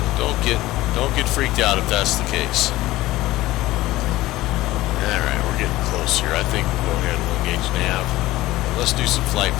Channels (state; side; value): quieter; right; 17.4 dB